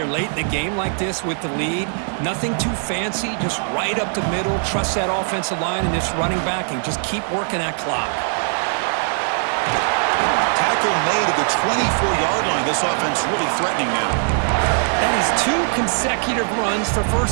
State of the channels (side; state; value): left; silent; 65 dB below the other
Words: late in the game like this with the lead. Nothing too fancy, just right up the middle. Trust that offensive line and this running back and just keep working that clock. Tackle made at the 24-yard line. This offense really threatening now. That is 2 consecutive runs for